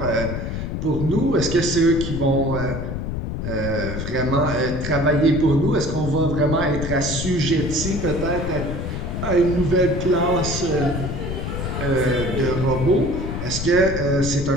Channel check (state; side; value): noise; left; rumble, 4 dB below the sound